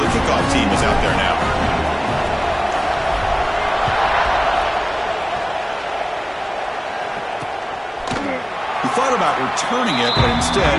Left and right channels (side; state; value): both; identical; correlation 1.00